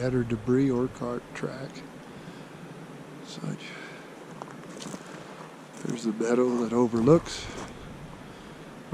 debris or cart track. Such. There's the meadow that overlooks,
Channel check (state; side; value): identical; both; correlation 1.00